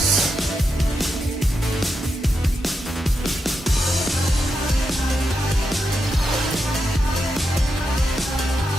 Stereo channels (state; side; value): normal; both; correlation 0.85